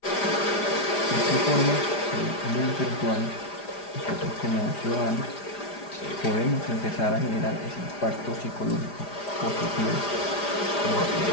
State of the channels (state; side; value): late; right; 4.9 ms